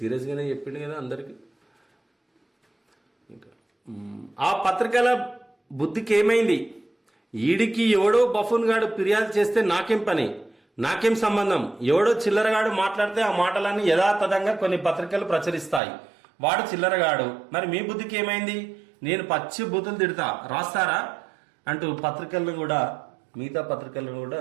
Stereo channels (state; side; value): drops out; left; at 15.8 s